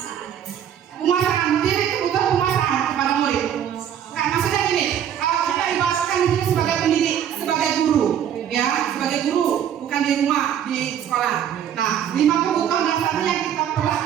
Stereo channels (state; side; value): quieter; left; 9.5 dB